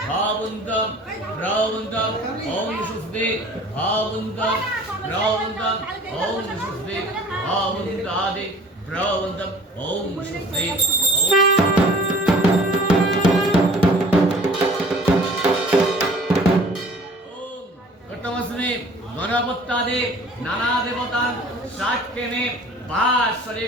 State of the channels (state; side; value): normal; both; correlation 0.49